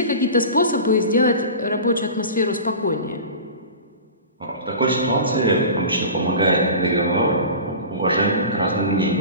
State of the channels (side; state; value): both; inverted; correlation -0.34